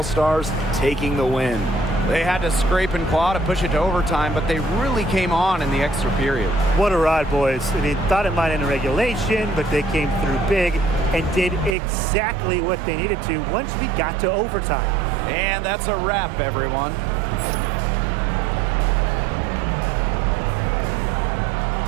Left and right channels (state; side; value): drops out; left; at 11.8 s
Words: taking the win. They had to scrape and claw to push it to overtime, but they really came on in the extra period. What a ride, boys. I mean, thought it might end in regulation, but they came through big and did exactly what they needed to once we got to overtime. And that's a wrap, everyone.